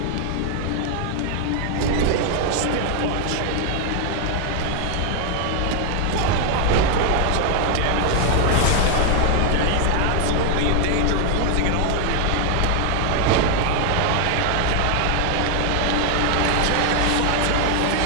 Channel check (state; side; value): different; both; correlation 0.00